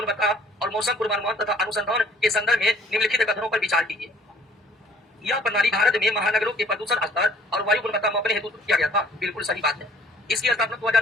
और मौसम पूर्वानुमान तथा अनुसंधान के संदर्भ में निम्नलिखित कथनों पर विचार कीजिए। यह प्रणाली भारत में महानगरों के प्रदूषण स्तर और वायु गुणवत्ता मापने हेतु किया गया था। बिल्कुल सही बात है। इसकी स्थापना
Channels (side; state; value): both; normal; correlation 0.57